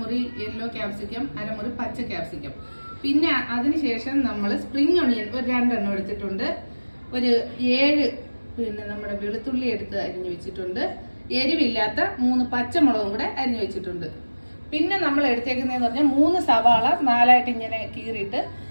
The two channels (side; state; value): both; inverted; correlation -1.00